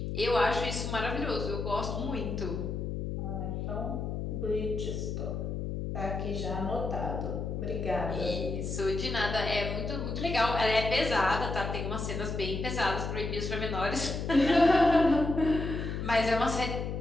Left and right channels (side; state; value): left; noise; hum, 3 dB below the sound